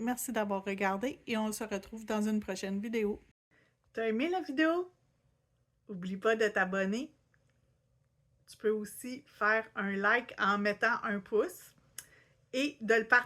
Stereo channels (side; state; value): both; identical; correlation 1.00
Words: d'avoir regardé et on se retrouve dans une prochaine vidéo. T'as aimé la vidéo? N'oublie pas de t'abonner. Tu peux aussi faire un like en mettant un pouce et de le